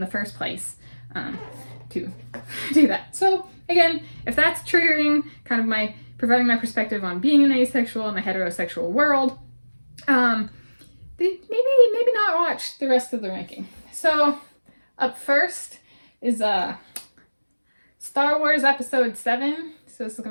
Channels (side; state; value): both; inverted; correlation -1.00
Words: first place to do that. So again, if that's triggering kind of providing my perspective on being an asexual in a heterosexual world, maybe not watch the rest of the ranking. So up first is Star Wars Episode 7. So let's look